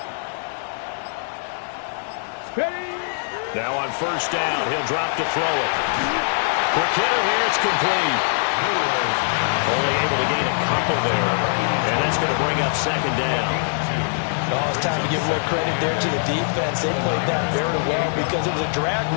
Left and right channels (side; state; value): right; silent; 64 dB below the other